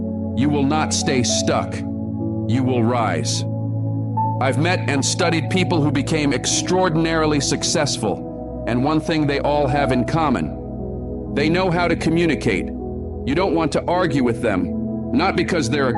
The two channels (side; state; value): both; identical; correlation 1.00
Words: you will not stay stuck. You will rise. I've met and studied people who became extraordinarily successful, and one thing they all have in common: they know how to communicate. You don't want to argue with them, not because they're